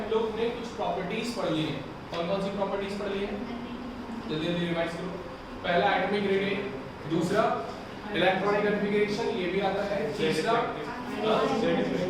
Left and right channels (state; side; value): identical; both; correlation 1.00